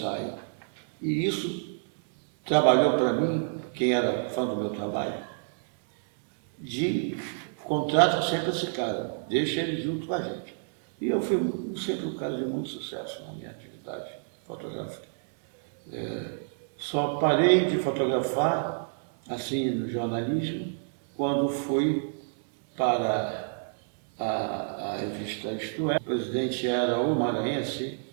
E isso trabalhou para mim, quem era fã do meu trabalho, de contrata sempre esse cara, deixa ele junto com a gente. E eu fui sempre um cara de muito sucesso na minha atividade fotográfica. Só parei de fotografar, assim, no jornalismo, quando fui para a revista Isto É. O presidente era o maranhense.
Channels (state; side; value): silent; left; digital silence